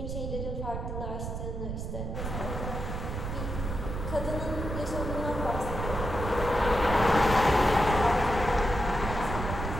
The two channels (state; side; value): noise; right; rumble, 4 dB below the sound